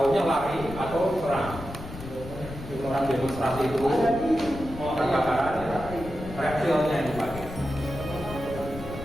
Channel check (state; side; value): noise; left; rumble, 12 dB below the sound